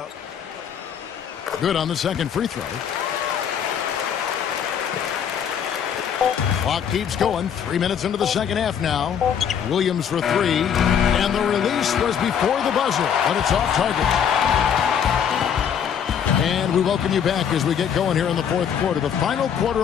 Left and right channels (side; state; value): right; quieter; 8.2 dB